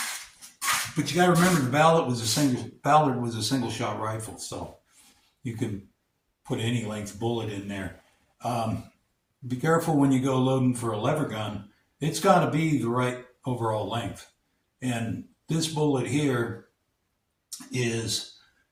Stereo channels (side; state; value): both; identical; correlation 1.00